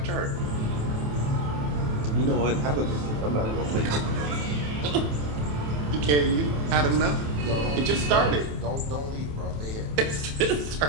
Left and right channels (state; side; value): late; left; 27 ms